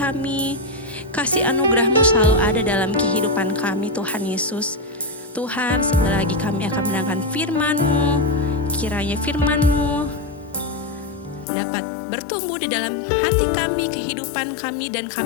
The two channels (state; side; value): drops out; right; at 11.5 s